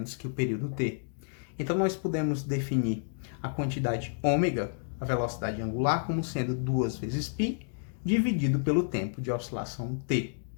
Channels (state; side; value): silent; right; digital silence